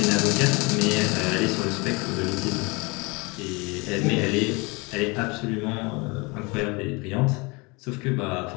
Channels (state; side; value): quieter; right; 27.2 dB